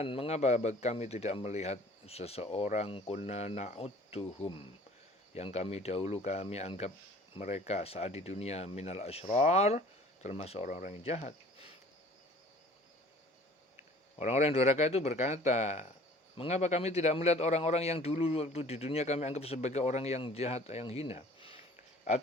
mengapa kami tidak melihat seseorang, kunna na'udduhum, yang kami dahulu kami anggap mereka saat di dunia, minal asyrar, termasuk orang-orang yang jahat. Orang-orang yang durhaka itu berkata, mengapa kami tidak melihat orang-orang yang dulu waktu di dunia kami anggap sebagai orang yang jahat, yang hina?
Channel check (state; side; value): normal; both; correlation 0.50